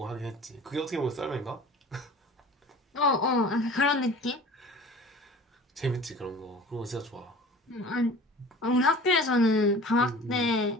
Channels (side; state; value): both; normal; correlation 0.42